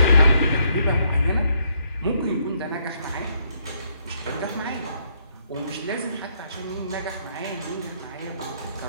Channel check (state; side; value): inverted; both; correlation -0.72